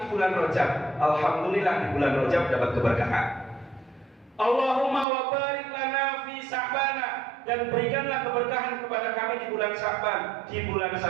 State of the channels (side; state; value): left; drops out; at 5.1 s